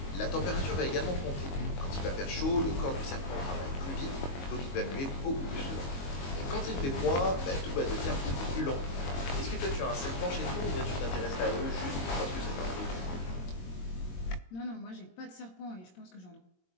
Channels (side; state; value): right; late; 22 ms